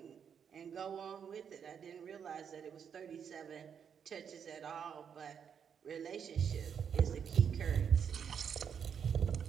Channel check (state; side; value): quieter; left; 7.5 dB